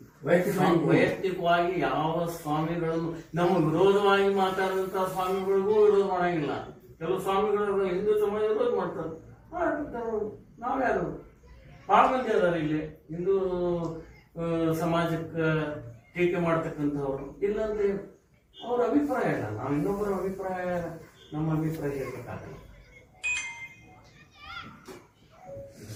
ವೈಯಕ್ತಿಕ ವೈಯಕ್ತಿಕವಾಗಿ ಯಾವ ಸ್ವಾಮಿಗಳನ್ನು ನಮ್ಮ ವಿರೋಧವಾಗಿ ಮಾತಾಡುವಂತ ಸ್ವಾಮಿಗಳಿಗೂ ವಿರೋಧ ಮಾಡಂಗಿಲ್ಲ. ಕೆಲವು ಸ್ವಾಮಿಗಳು ಹಿಂದೂ ಸಮಾಜ ವಿರೋಧ ಮಾಡ್ತಾರೆ, ನಾವ್ಯಾರು ಬಹಳ ಮಂದಿ ಅದಾರ ಇಲ್ಲಿ ಹಿಂದೂ ಸಮಾಜಕ್ಕೆ ಟೀಕೆ ಮಾಡ್ತಕ್ಕಂಥವ್ರು. ಇಲ್ಲಂದ್ರೆ ಅವ್ರ ಅಭಿಪ್ರಾಯ ಇಲ್ಲ, ನಾವು ಇನ್ನೊಬ್ಬರ ಅಭಿಪ್ರಾಯ ನಮ್ಮ ಅಭಿಪ್ರಾಯ ಇರಬೇಕಾಗಲ್ಲ.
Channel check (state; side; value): identical; both; correlation 1.00